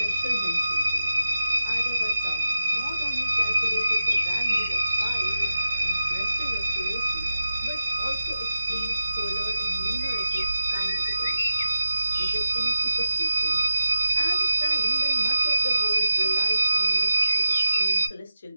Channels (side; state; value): both; inverted; correlation -0.92